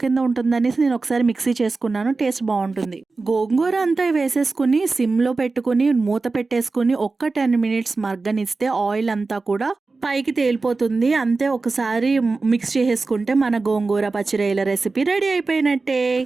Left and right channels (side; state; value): left; quieter; 3.8 dB